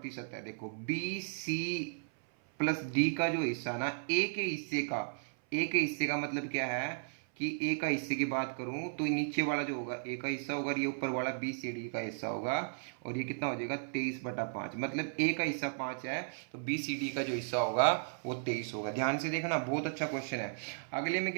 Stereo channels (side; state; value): left; silent; 54 dB below the other